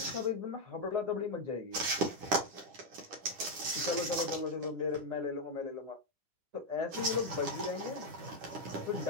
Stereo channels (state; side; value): late; left; 10 ms